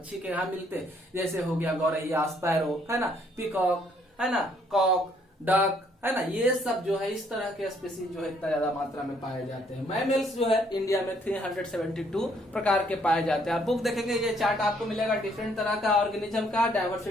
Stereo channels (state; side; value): normal; both; correlation 0.67